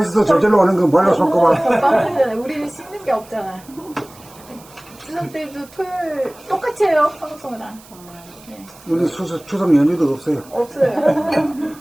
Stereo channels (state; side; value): noise; right; hiss, 23 dB below the sound